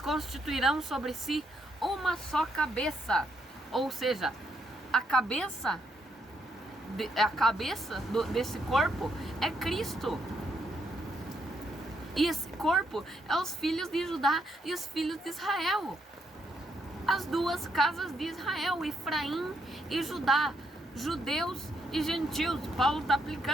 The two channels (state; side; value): normal; both; correlation 0.76